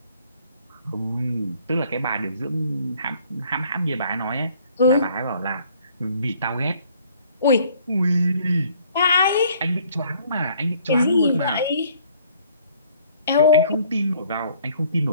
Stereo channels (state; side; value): inverted; both; correlation -0.60